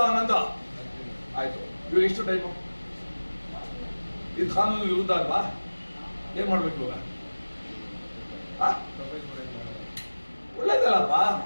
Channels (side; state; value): both; inverted; correlation -1.00